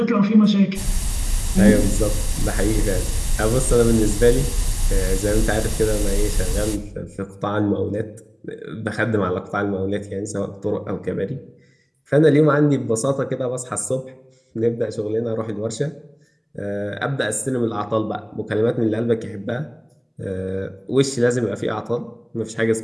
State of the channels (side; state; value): both; identical; correlation 1.00